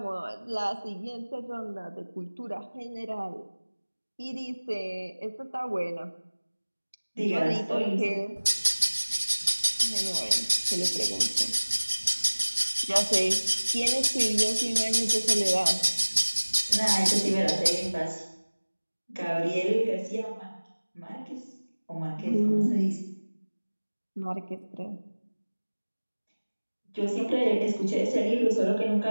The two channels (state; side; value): inverted; both; correlation -1.00